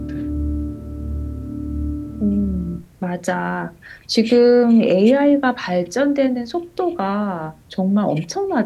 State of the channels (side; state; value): both; identical; correlation 1.00